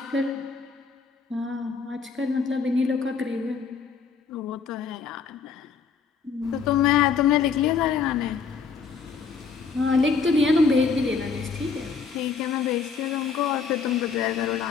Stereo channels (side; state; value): right; quieter; 5.5 dB